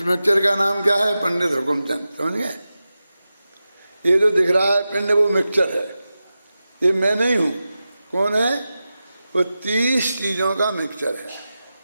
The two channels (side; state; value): both; inverted; correlation -0.93